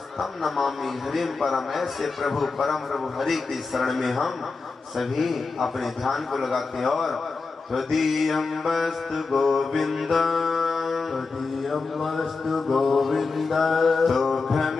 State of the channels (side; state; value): right; quieter; 4.2 dB